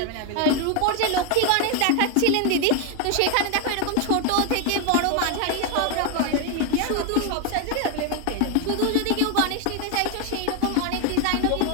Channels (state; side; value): different; both; correlation 0.01